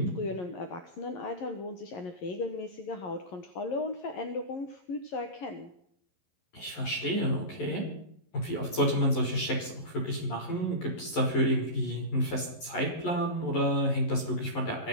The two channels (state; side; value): late; right; 11 ms